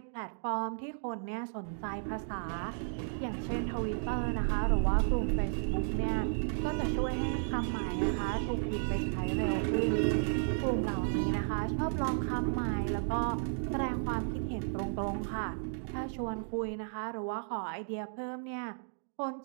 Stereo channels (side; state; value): left; silent; digital silence